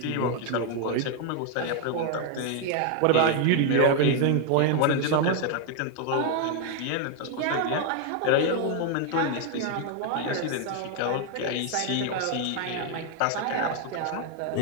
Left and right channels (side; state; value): both; different; correlation 0.01